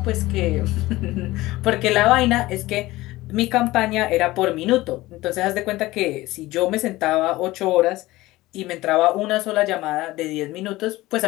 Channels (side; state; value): right; quieter; 18.5 dB